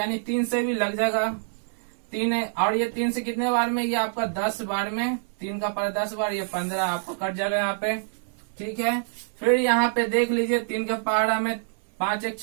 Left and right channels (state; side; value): silent; left; 61 dB below the other